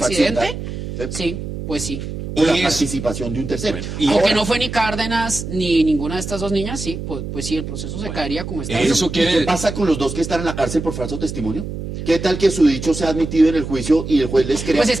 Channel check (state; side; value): noise; right; hum, 7 dB below the sound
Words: accidente, accidental. sí, pues sí. con la Y participación de un tercero. Bueno, y Aunque Ahora, no fue ni Cárdenas ni ninguna de estas dos niñas, sí, pues sí, el proceso se caería como está. eso ¿y quiere... qué pasa con los dos que están en la cárcel por falso testimonio? ¿Qué tal que su dicho sea admitido en el juicio y el juez les crea? Pues es